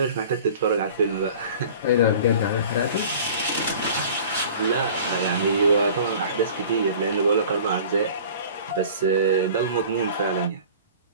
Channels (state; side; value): inverted; both; correlation -0.44